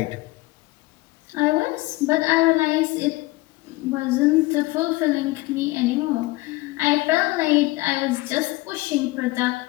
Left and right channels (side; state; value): right; quieter; 20.7 dB